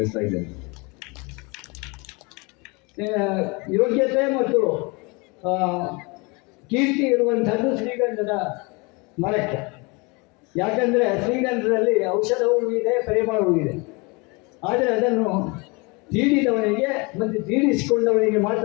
ಇದ್ದೇನೆ. ಯೋಗ್ಯತೆ ಮತ್ತು ಕೀರ್ತಿ ಇರುವಂಥದ್ದು ಶ್ರೀಗಂಧದ ಮರಕ್ಕೆ. ಯಾಕಂದರೆ ಶ್ರೀಗಂಧದಲ್ಲಿ ಔಷಧವೂ ಇದೆ, ಪರಿಮಳವೂ ಇದೆ. ಆದರೆ ಅದನ್ನು ತೀಡಿದವನಿಗೆ ಮತ್ತು ತೀಡಿಸಿಕೊಂಡವನಿಗೆ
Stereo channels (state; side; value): quieter; right; 28.2 dB